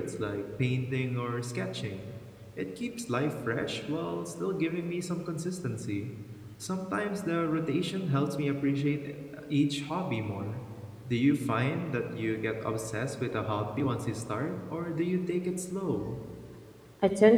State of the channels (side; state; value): both; identical; correlation 1.00